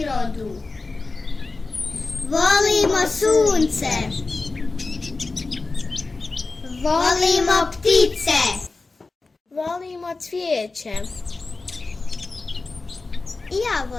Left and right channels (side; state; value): right; quieter; 3.7 dB